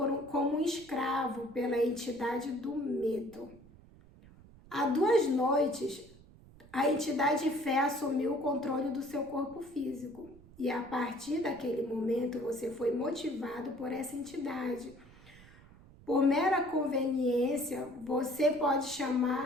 um escravo pela entidade do medo. Há 2 noites, a entidade fé assumiu o controle do seu corpo físico. E a partir daquele momento, você foi motivado por essa entidade. Por mera conveniência, você pode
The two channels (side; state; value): right; noise; rumble, 23 dB below the sound